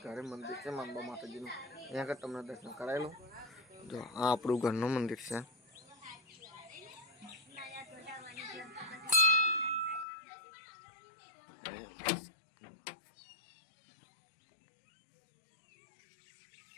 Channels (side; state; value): right; drops out; at 10.1 s